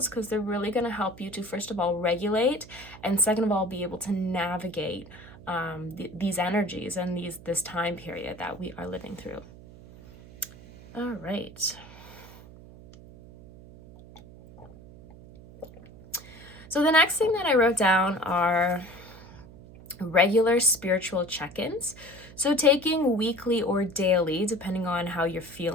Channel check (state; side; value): noise; right; hum, 19 dB below the sound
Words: because they're really going to help you to, first of all, regulate, and second of all, be able to navigate these energies and this time period that we are living through. All right. So the next thing that I wrote down are regular spiritual check-ins. So taking weekly or daily, depending on how you're